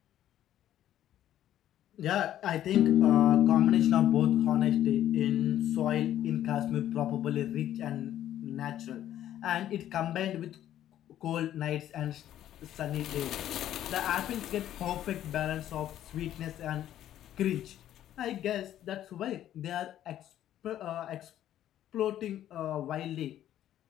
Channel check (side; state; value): right; quieter; 11.9 dB